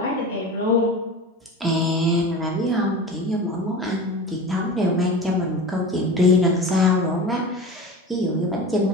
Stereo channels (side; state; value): both; normal; correlation 0.32